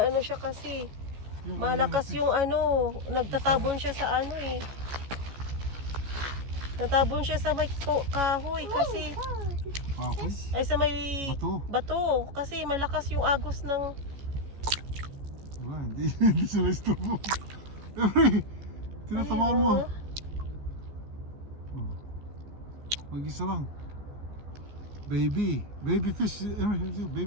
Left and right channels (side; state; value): left; late; 14 ms